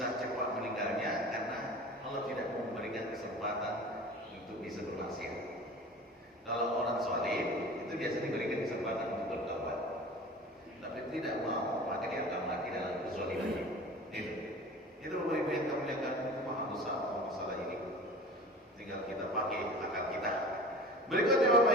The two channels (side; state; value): both; normal; correlation 0.39